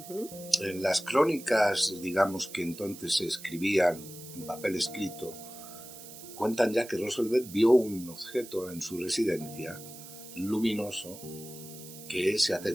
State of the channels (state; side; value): noise; right; hiss, 15 dB below the sound